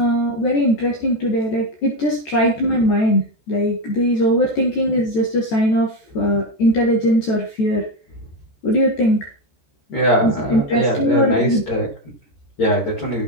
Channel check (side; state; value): right; late; 14 ms